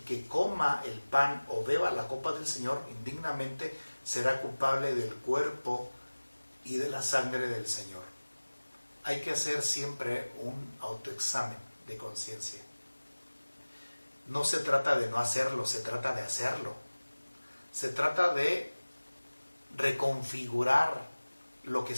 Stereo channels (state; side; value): inverted; both; correlation -1.00